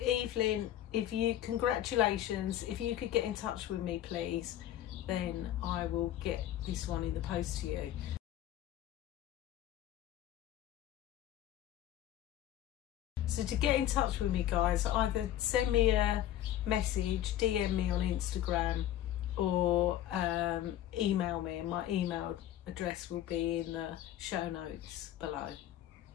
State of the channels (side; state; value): right; quieter; 12.4 dB